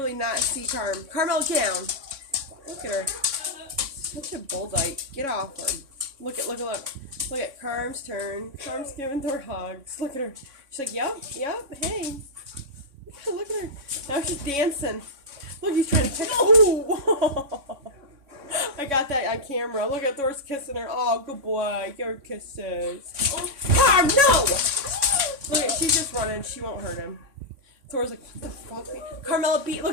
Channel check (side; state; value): left; late; 3.6 ms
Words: not see Carmella, get down. Look at her. Such a bulldyke. Get off her. Look. Look at Carm's turn. Carm's giving Thor hugs. Look at her. She's like, yep, hey. Look at her. Now she's dancing. Look, he's trying to pick. Oh! I got that on camera. Look at Thor's kissing her. Oh, good boy. Your kisses. Oh. Carm, no! Look, she's just running. She won't hurt him. Thor's like, what the fuck? Carmella beat.